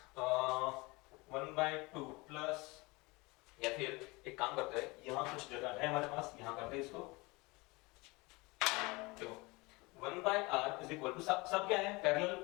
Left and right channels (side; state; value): right; quieter; 24.6 dB